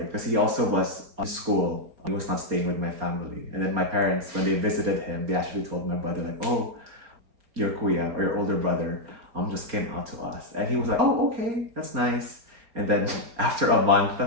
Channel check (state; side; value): late; left; 4.3 ms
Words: because he also was on school. He was not staying with my family. And then my parents, when they visited him, they actually told my brother, like, oh, your kuya or your older brother just came out to us. And he was like, oh, okay, that's nice. And then after a month,